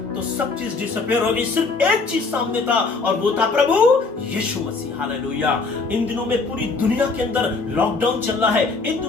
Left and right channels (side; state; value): right; quieter; 4.1 dB